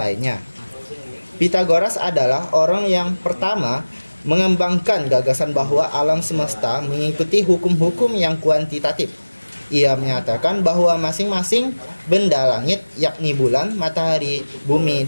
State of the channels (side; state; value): both; inverted; correlation -1.00